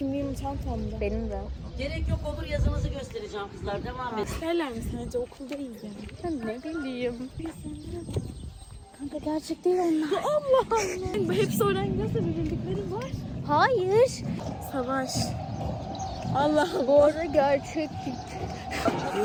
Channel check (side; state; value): both; identical; correlation 1.00